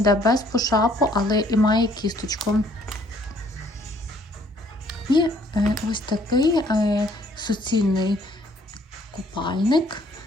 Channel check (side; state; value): both; normal; correlation 0.62